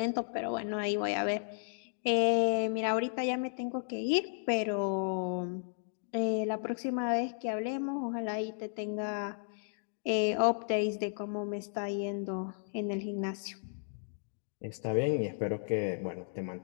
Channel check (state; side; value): silent; right; digital silence